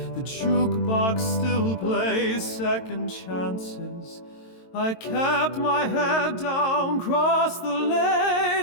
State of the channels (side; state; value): right; late; 22 ms